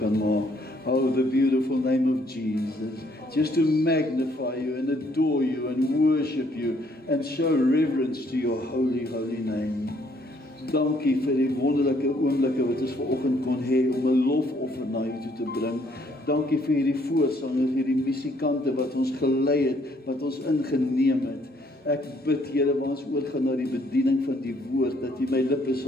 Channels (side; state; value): both; normal; correlation 0.66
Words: maak. Oh, the beautiful name of Jesus. Just to magnify you and adore you and worship you and show reverence to your holy, holy name. Dankie vir die wonderlike oomblikke wat ons vanoggend kon hê om 'n lofoffer na U toe te bring. Dankie vir hierdie voorsangers, hierdie musikante wat ons gelei het, wat ons ingeneem het. Ek bid, Here, waar ons oorgaan na die bediening van die woord, dat U my lippe